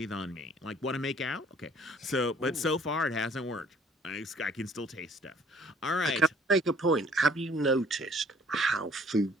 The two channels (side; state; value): both; normal; correlation 0.58